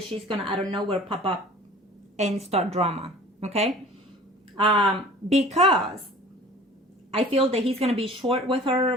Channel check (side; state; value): both; normal; correlation 0.46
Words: she's gonna out of nowhere pop up and start drama. Okay, because I feel that he's gonna be short with her